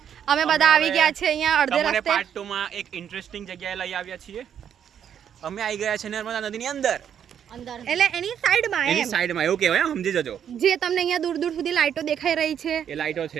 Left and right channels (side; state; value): left; quieter; 8.8 dB